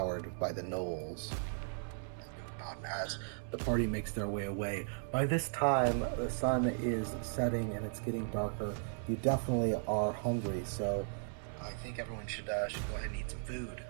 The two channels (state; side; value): silent; left; 53 dB below the other